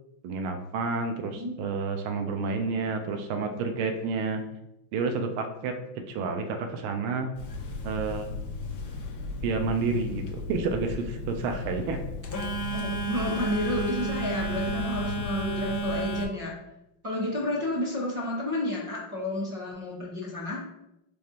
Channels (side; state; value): left; late; 5.1 ms